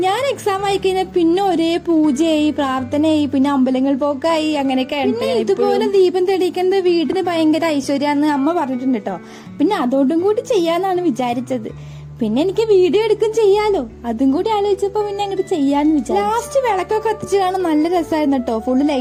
ഞാൻ എക്സാം ആയി കഴിഞ്ഞാൽ പിന്നെ ഒരേ പൂജയായി, പ്രാർത്ഥനയായി, പിന്നെ അമ്പലങ്ങൾ പോക്കായി, അങ്ങനെയൊക്കെ. ഇതുപോലെ ദീപം തെളിയിക്കുന്നത് വീടിന് ഭയങ്കര ഐശ്വര്യാന്ന് അമ്മ പറഞ്ഞിട്ടുണ്ട് കേട്ടോ. പിന്നെ അതോടും കൂടി ചെയ്യാന്നാണ് വിചാരിച്ചത്. പിന്നെ എനിക്ക് വീഡിയോ എടുക്കും ചെയ്യാലോ, അതും കൂടി ആലോചിച്ചപ്പോ പിന്നെ അങ്ങോട്ട് ചെയ്യാന്ന് വിചാരിച്ചു. ലാസ്റ്റ് വിളക്കൊക്കെ കത്തിച്ചതാണ്, നല്ല രസമായിരുന്നു കേട്ടോ. ഫുള്ള്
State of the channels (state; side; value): identical; both; correlation 1.00